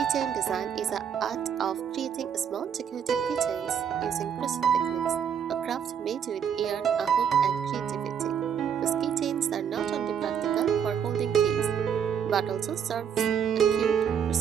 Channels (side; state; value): left; quieter; 8.0 dB